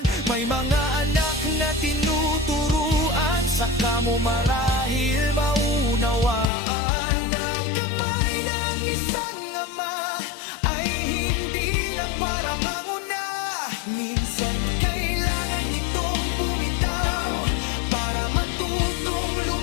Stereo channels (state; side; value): drops out; right; at 6.5 s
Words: mo marahil maunawaan ang kamay ng isang ama ay hindi lang para manguna. Minsan kailangan nitong bumitaw para matutong